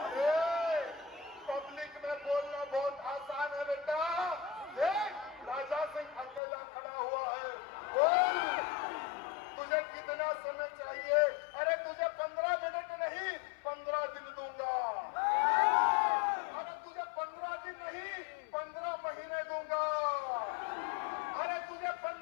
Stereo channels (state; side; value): drops out; right; at 6.4 s